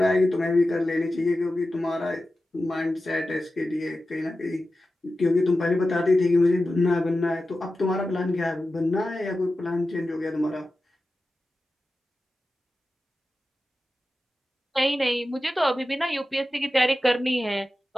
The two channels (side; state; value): both; normal; correlation 0.93